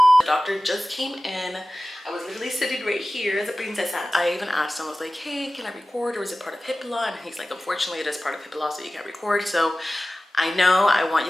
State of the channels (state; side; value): normal; both; correlation 0.96